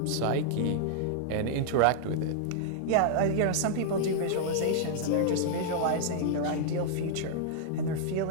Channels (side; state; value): both; different; correlation -0.01